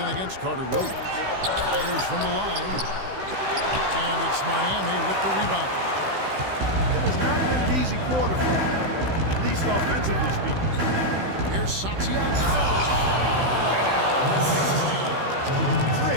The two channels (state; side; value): late; left; 16 ms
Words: against Carter Williams. Fires from the line. And it's Miami with the rebound. It has not been an easy quarter for him, at least offensively speaking. Here's Santiago.